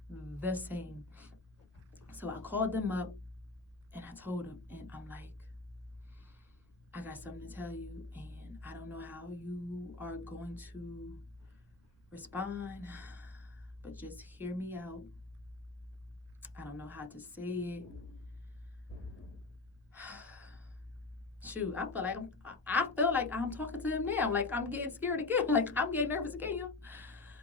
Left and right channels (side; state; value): right; quieter; 3.7 dB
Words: the same. So I called them up and I told him, and I'm like, I got something to tell you, and I don't know how you are going to respond, but just hear me out. I don't know how to say it. Shoot, I feel like I'm talking to him now. Like, I'm getting scared again. Like, I'm getting nervous again.